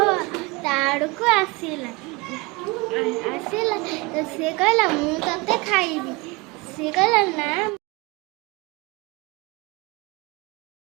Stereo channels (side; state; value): left; quieter; 25.4 dB